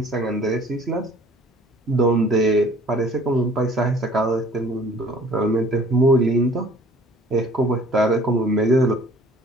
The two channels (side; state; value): both; normal; correlation 0.53